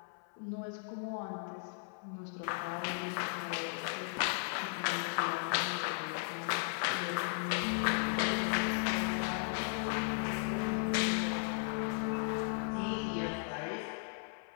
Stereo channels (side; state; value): right; silent; 54 dB below the other